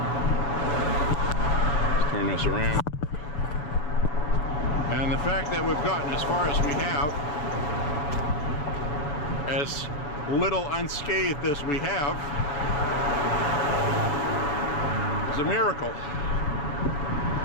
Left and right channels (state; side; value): late; right; 6.9 ms